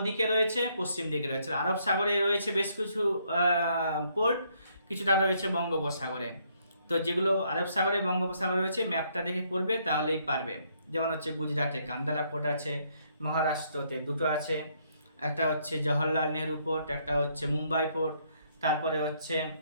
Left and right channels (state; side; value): inverted; both; correlation -0.70